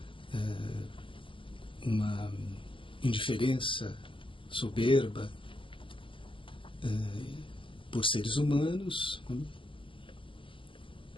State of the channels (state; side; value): late; right; 0.25 ms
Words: uma indiferença soberba por seres humanos, né,